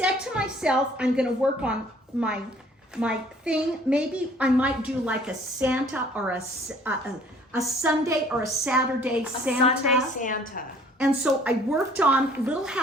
to myself, I'm going to work on my thing. Maybe I might do like a Santa or a Sunday or a Saturday Santa. Sunday Santa. And so I worked on Little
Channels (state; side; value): normal; both; correlation 0.56